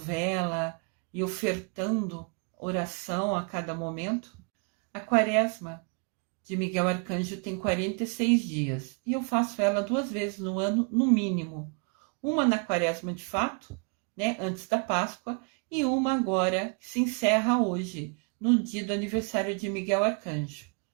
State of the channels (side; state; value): left; quieter; 37.6 dB